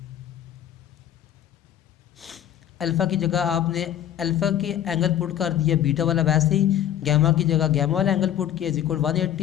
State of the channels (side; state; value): right; quieter; 10.9 dB